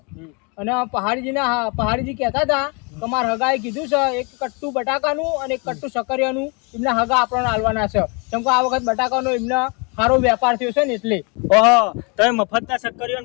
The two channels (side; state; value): right; quieter; 32.4 dB